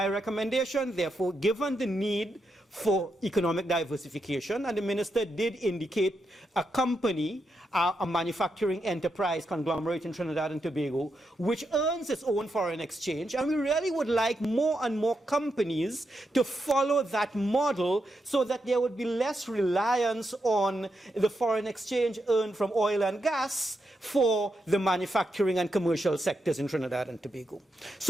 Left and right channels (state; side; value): normal; both; correlation 0.84